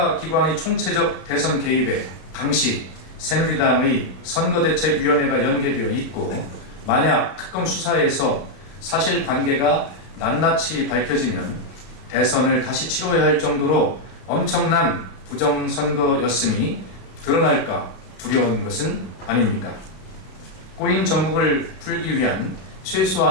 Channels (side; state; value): right; late; 32 ms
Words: 총체적 대선 개입에 당시 새누리당의 선거대책위원회가 연계되어 있고 만약 특검 수사에서 사실관계가 낱낱이 밝혀지면 대선을 다시 치러야 할 정도로 엄청난 부정선거였음이 드러날까 두려운 것은 아닙니까? 꼬인 전국을 풀기 위한